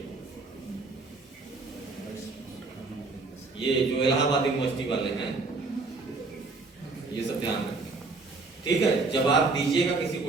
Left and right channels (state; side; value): quieter; left; 3.8 dB